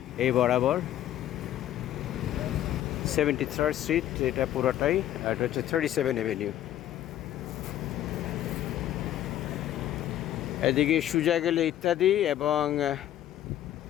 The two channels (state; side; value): quieter; right; 12.3 dB